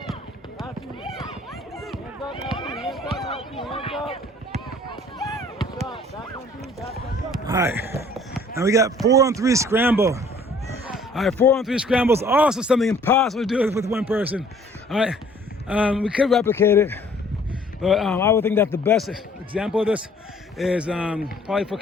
That's you. Hands up, Matthew. Hands up. Hands up. Shot. Back on B. Back on B. All right. Now we got 4-on-3 scramble. All right, 4-on-3 scramble is also something impossible to do with one person. All right. We could replicate it, but I would think that the best example of this is probably for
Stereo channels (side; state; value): both; normal; correlation 0.56